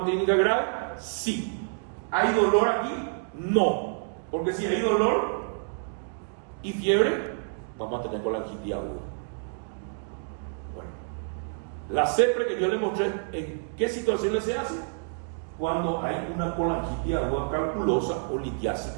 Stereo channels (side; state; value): left; silent; digital silence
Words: clínica grave? Sí. ¿Hay dolor aquí? No. Porque si hay dolor y fiebre, vamos a tener colangitis aguda. Bueno, la CEPRE que yo le mostré, ¿en qué situaciones se hace? Cuando hay una colangitis aguda calculosa o